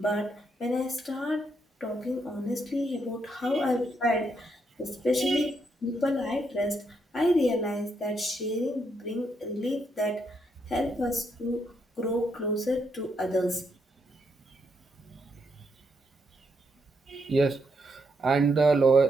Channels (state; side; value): normal; both; correlation 0.78